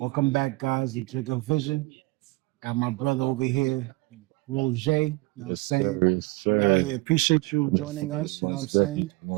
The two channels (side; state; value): left; quieter; 24.0 dB